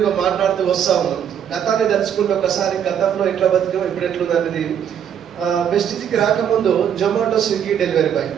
మాట్లాడుతూ వస్తూ ఉన్నాం. గతాన్ని తలుచుకుంటే ఒకసారి గతంలో ఎట్లా బతికాం, ఇప్పుడు ఎట్లుంది అనేది. వెస్టీజ్కి రాకముందు జొమాటో, స్విగ్గీ డెలివరీ బాయ్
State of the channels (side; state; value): left; quieter; 8.8 dB